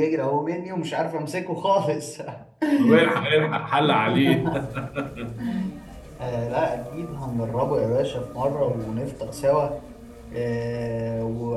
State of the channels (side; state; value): both; identical; correlation 1.00